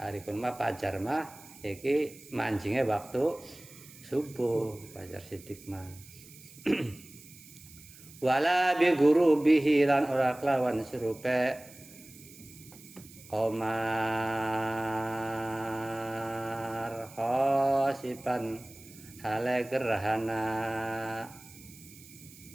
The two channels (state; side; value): noise; right; hiss, 20 dB below the sound